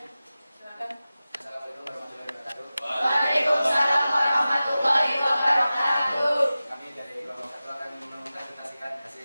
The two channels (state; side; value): inverted; both; correlation -0.96